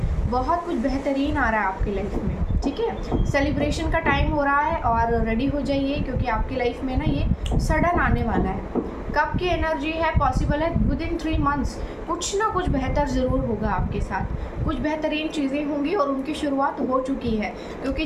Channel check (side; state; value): both; identical; correlation 1.00